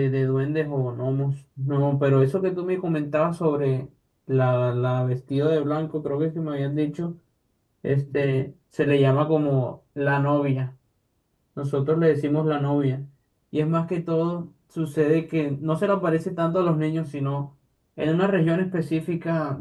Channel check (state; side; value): identical; both; correlation 1.00